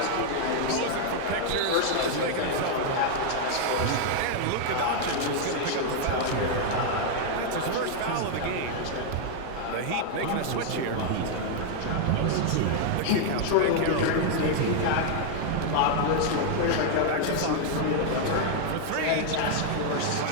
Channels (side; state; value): both; different; correlation 0.00